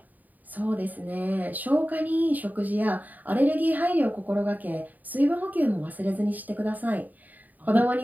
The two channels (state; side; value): late; left; 0.083 ms